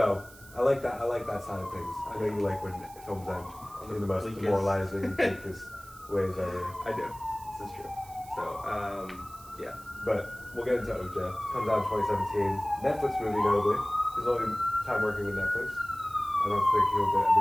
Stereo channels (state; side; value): noise; right; hiss, 21 dB below the sound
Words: I like that. I like that side of things. I know you like when films end in the most Bleakest. demoralizing, bleakest ways ever. I do. This is true. So, yeah. But we'll get into Ocha. Comes out in 2017. Netflix movie, notably. His only time working with Netflix. I don't think he'll ever